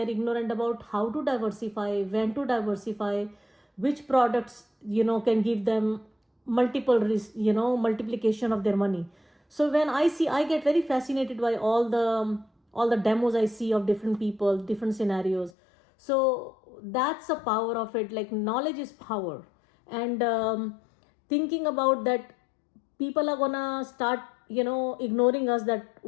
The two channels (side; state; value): right; drops out; at 15.5 s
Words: ignorant about how to diversify, when to diversify, which products, can give them multiplication of their money. So when I get very fascinated by all the demos I see of different people, different scenarios. So that's the power of it. Like, knowledge is power. And thinking about that people are gonna start ignoring us, that